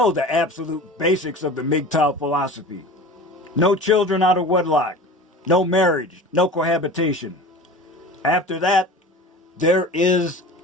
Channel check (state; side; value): normal; both; correlation 0.37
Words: the absolute basics of the MGTOW philosophy. No children out of wedlock. No marriage. No cohabitation. After that, there is